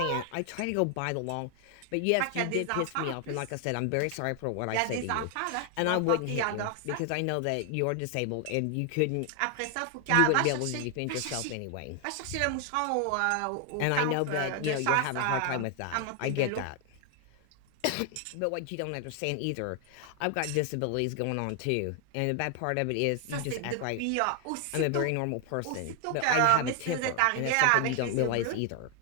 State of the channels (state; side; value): different; both; correlation 0.00